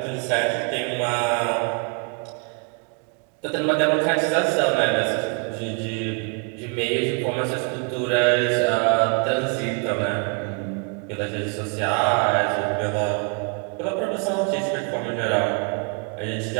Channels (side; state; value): left; quieter; 36.9 dB